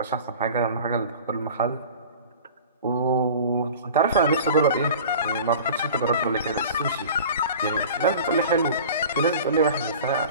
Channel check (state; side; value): inverted; both; correlation -0.40